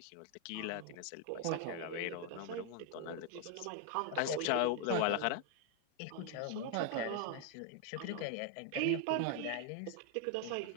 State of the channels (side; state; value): both; different; correlation 0.00